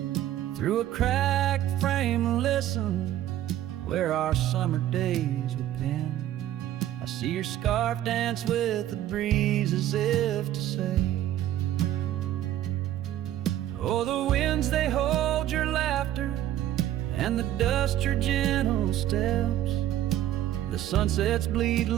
Through a cracked frame, listen where our summer days were penned. I see your scarf dance with the breeze as if to say, oh, the winds, they hold your laughter, and the dust your gentle steps. The sunsets bleed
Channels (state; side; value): quieter; left; 12.7 dB